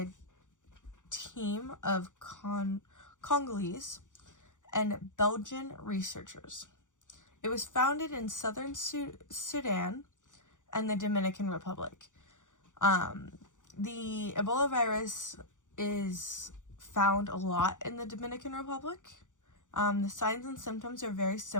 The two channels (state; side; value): late; right; 0.86 ms